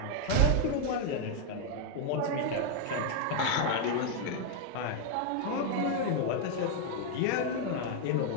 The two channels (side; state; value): both; different; correlation 0.00